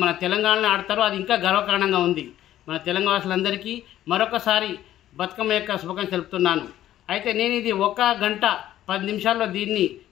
మన తెలంగాణలో ఆడతారు. అది ఇంకా గర్వకారణంగా ఉంది. మన తెలంగాణ వాసులందరికీ మరొకసారి బతుకమ్మ యొక్క శుభాకాంక్షలు తెలుపుతున్నాను. అయితే నేను ఇది 1 గంట 10 నిమిషాల్లో దీన్ని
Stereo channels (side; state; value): right; quieter; 12.8 dB